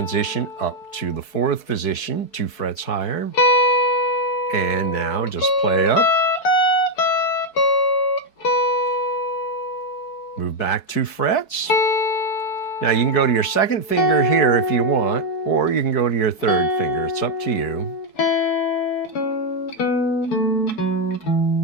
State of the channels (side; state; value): right; late; 4.7 ms